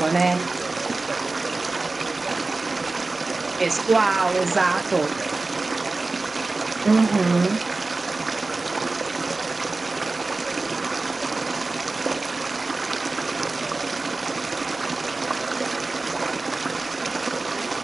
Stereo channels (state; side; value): quieter; left; 3.4 dB